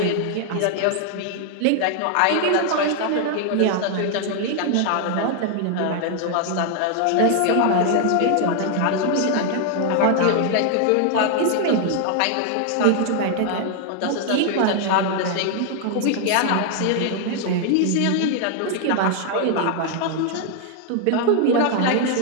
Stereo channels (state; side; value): different; both; correlation 0.00